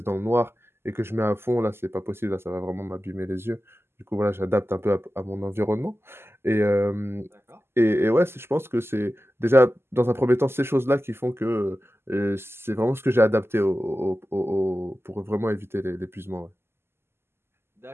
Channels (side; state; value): left; late; 0.12 ms